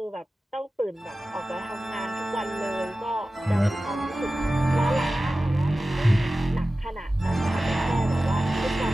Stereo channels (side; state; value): both; normal; correlation 0.95